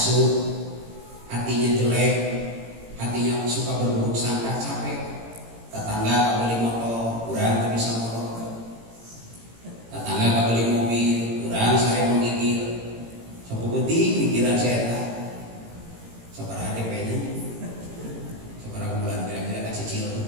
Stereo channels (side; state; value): left; late; 18 ms